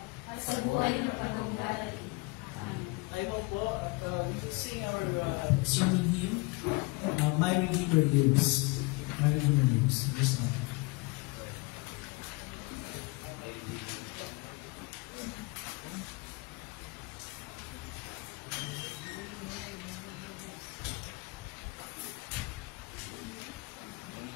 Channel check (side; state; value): right; quieter; 25.7 dB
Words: at sa buhay ng panahong darating. Amen. tayo mo po at sing our sermon hymn, My Redeemer Lives. My Redeemer Lives. This one.